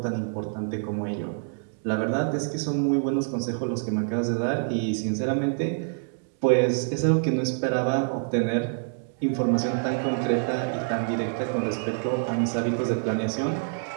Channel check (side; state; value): left; silent; digital silence